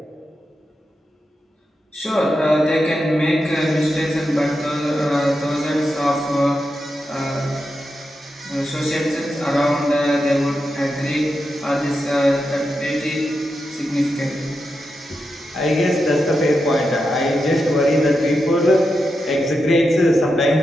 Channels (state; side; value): normal; both; correlation 0.87